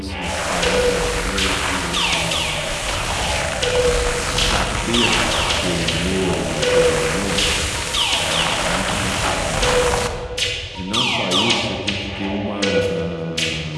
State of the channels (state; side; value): identical; both; correlation 1.00